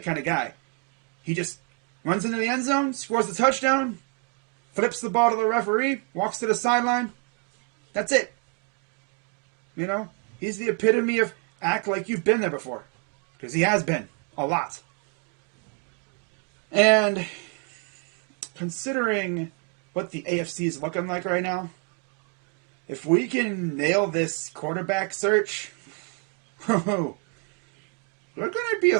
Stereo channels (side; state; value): left; quieter; 35.3 dB